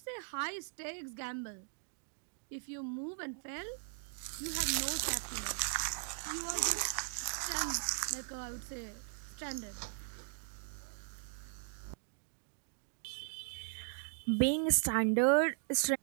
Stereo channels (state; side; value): silent; left; digital silence